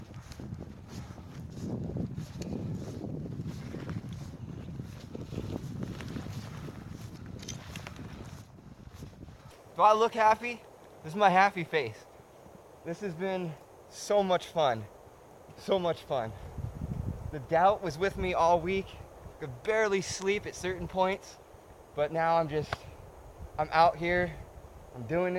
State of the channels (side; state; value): both; identical; correlation 1.00